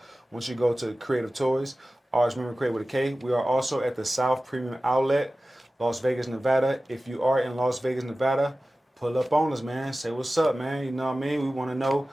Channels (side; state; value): both; normal; correlation 0.96